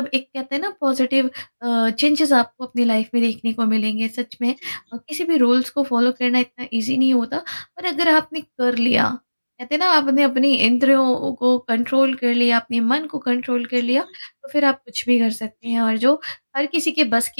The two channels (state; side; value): inverted; both; correlation -1.00